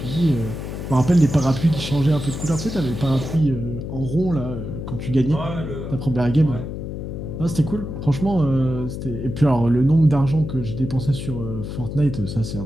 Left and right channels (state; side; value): noise; left; hum, 7 dB below the sound